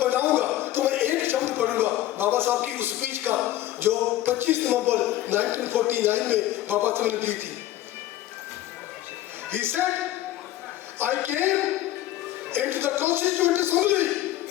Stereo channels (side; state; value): right; quieter; 14.1 dB